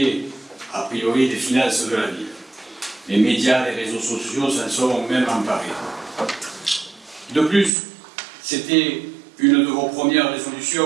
a priori les finances de la ville. Les médias, les réseaux sociaux s'en sont même emparés. De plus, c'était une de vos premières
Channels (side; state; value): left; drops out; at 7.7 s